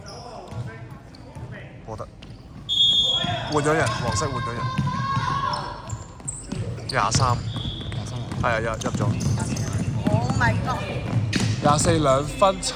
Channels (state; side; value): identical; both; correlation 1.00